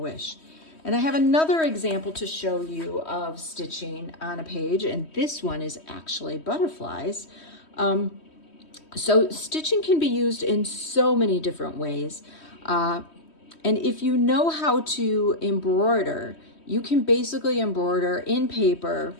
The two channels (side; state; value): right; late; 3.1 ms